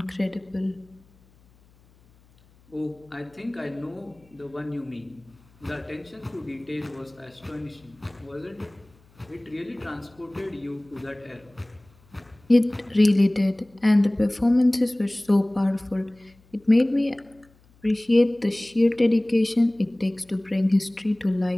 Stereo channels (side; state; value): left; noise; hum, 30 dB below the sound